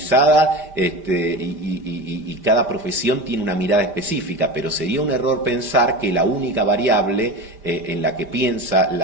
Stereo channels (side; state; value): left; late; 5.1 ms